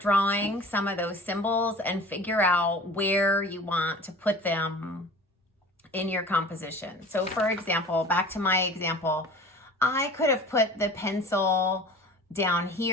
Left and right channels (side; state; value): both; normal; correlation 0.42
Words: drawing some of those symbols and figure out where you want to put them in your composition. So for example, back to my example, I could have put the pencil down